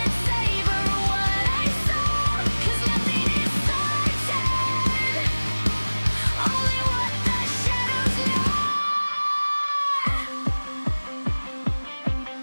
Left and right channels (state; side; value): inverted; both; correlation -1.00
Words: it savor what I saw, 'cause nothing is certain, only what the shadows know.